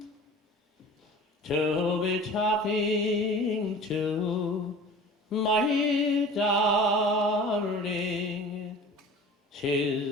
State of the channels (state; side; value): normal; both; correlation 0.41